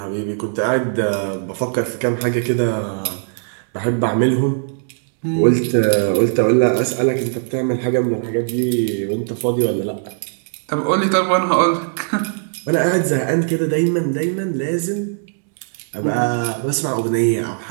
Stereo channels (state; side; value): silent; left; digital silence